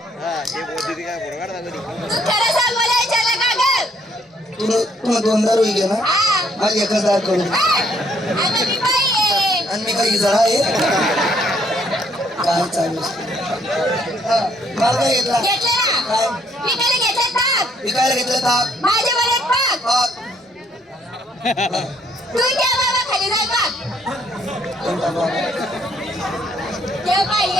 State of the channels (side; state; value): both; normal; correlation 0.68